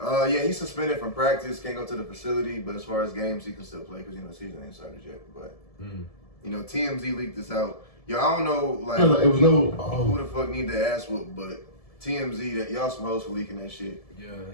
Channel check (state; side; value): late; right; 1.7 ms